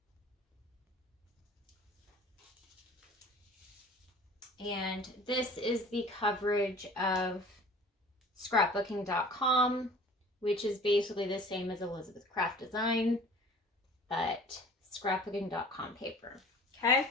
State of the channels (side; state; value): both; normal; correlation 0.46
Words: And this is the coverage of scrapbooking.com, which is basically the same as Elizabeth Craft Design, but scrapbooking.com paper. Okay.